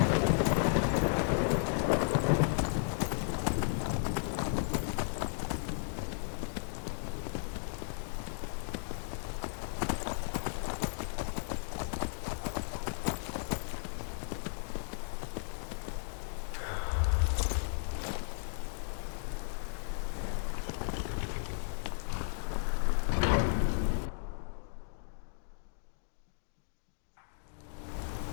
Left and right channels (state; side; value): silent; right; digital silence